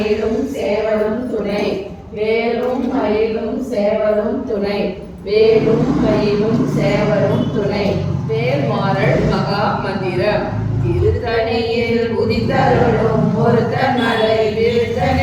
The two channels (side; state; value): both; identical; correlation 1.00